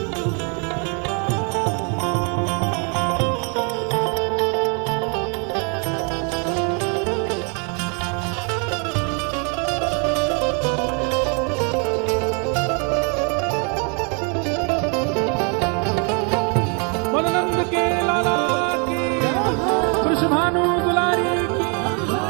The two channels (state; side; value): quieter; left; 36.6 dB